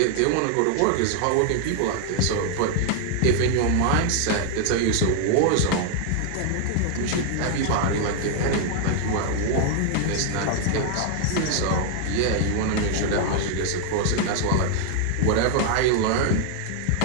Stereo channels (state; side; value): different; both; correlation 0.00